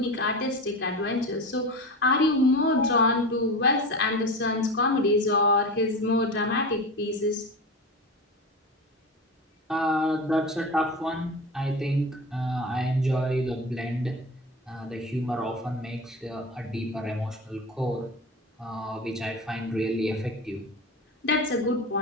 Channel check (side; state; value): both; normal; correlation 0.28